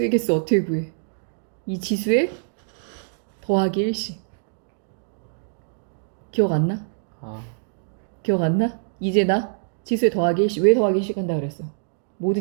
개수 어떻게 구해? 이 지수에 더하기 1씩. 기억 안 나? 기억 안 나? 이제 나 지수에 더하기 1씩. 왜 더하기 1씩 한다 그랬어?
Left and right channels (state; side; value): silent; left; digital silence